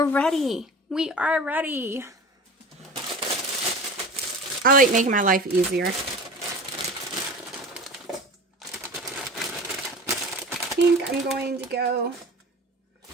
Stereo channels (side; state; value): both; normal; correlation 0.37